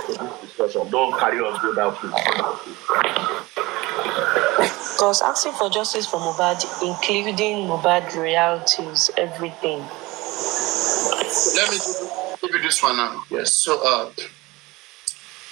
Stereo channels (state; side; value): quieter; left; 21.4 dB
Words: to this discussion. Don't carry on to that, please. Because asking for justice for Mohbad, including Mohbad realities, everything. Let me give you this one now. Yes. So,